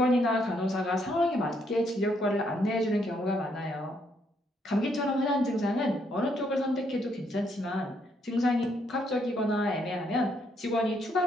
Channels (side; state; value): both; normal; correlation 0.73